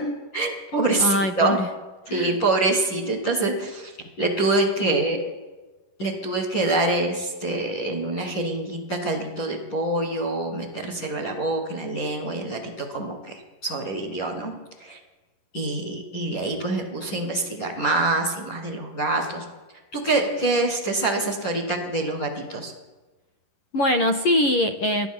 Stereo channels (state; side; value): late; right; 11 ms